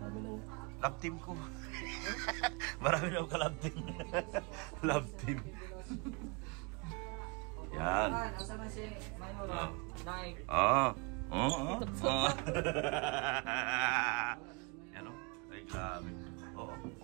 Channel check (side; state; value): left; quieter; 30.2 dB